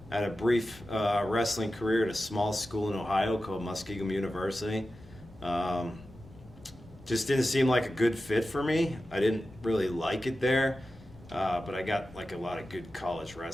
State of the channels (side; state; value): left; noise; rumble, 21 dB below the sound